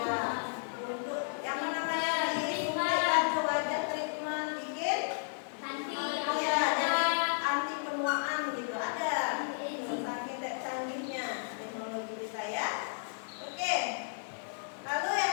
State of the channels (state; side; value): silent; right; 56 dB below the other